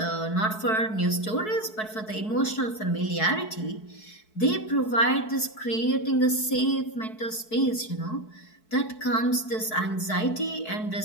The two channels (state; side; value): late; right; 4.6 ms